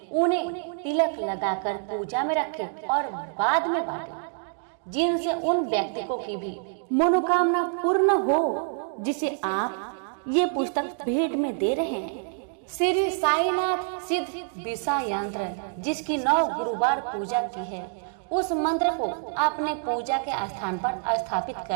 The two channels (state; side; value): silent; left; 60 dB below the other